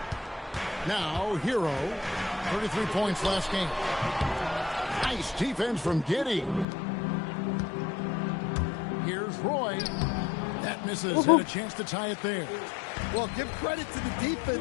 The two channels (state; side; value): drops out; right; at 6.7 s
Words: Now, Hero. 33 points last game. Nice defense from Giddey. Here's Roy. That misses. Had a chance to tie it there. Well, give credit to the